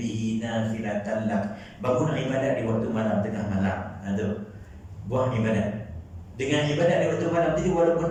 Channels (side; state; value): both; identical; correlation 1.00